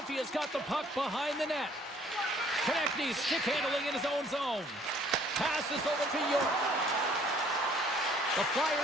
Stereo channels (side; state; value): both; normal; correlation 0.59